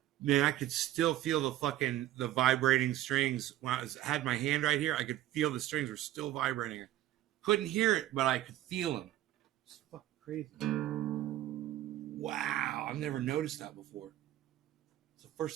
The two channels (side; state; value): left; quieter; 13.9 dB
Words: Man, I could still feel the vibrating strings when had my hand right here. I could feel the strings were still vibrating. Couldn't hear it, but I could feel them. It's fucking crazy. Wow, I've never noticed that before. It's the